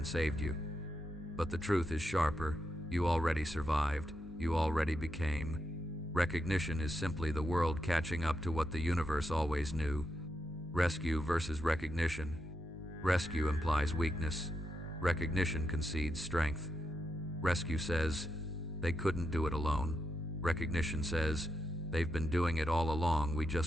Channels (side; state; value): both; normal; correlation 0.84